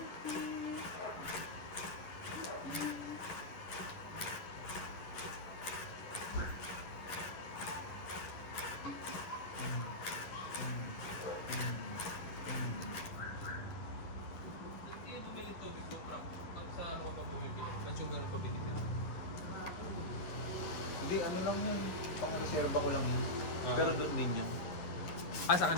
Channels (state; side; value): late; right; 11 ms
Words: Hindi, ano lang yun. Reserva ko lang yun. Pero doon din yan. Ah, sa